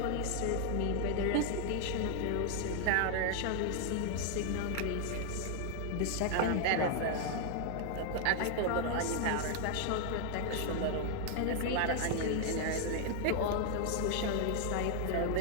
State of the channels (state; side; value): different; both; correlation 0.00